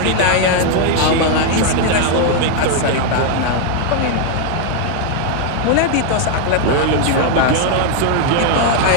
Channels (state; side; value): different; both; correlation 0.00